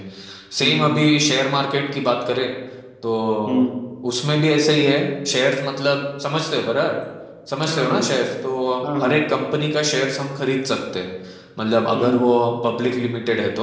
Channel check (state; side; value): identical; both; correlation 1.00